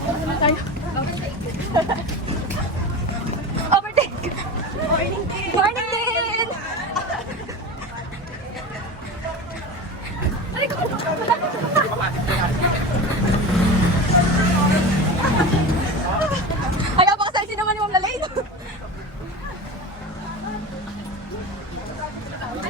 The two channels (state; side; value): normal; both; correlation 0.28